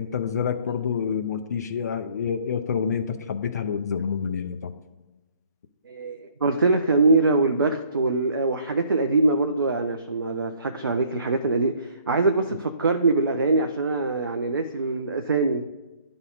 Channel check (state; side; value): inverted; both; correlation -0.59